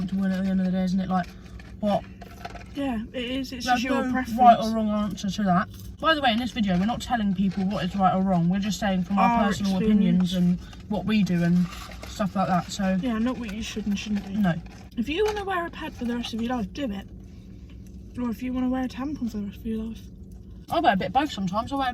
in at the end of the day, isn't it? Like, what? Yeah, it is. It's There's just your no preference. right or wrong answer to that. By the way, in this video, we're not telling people what is right or wrong. We're just saying from our personal opinions and what we do and stuff like that. So yeah, not what you should and shouldn't do. no. If you want to wear a pad for the rest of your life, do it. Or if you want to wear a tampon for the rest of your life. I wear a bit of both sometimes. I wear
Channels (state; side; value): identical; both; correlation 1.00